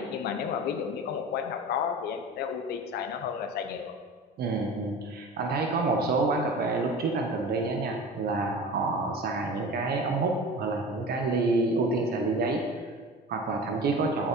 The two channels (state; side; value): normal; both; correlation 0.35